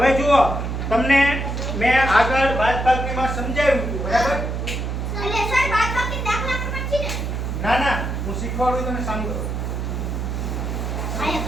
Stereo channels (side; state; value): right; noise; hum, 3 dB below the sound